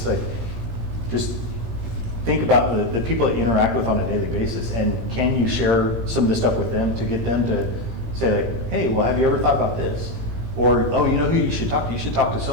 Like, just think about the people that you interact with on a daily basis, and can you share some of this stuff with them to get them to say, like, hey, well, have you ever thought about this? Or, oh, you know who you should talk to? You should talk to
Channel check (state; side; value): late; left; 17 ms